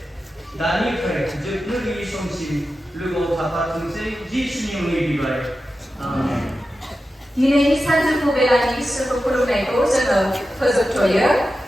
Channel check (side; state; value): both; normal; correlation 0.92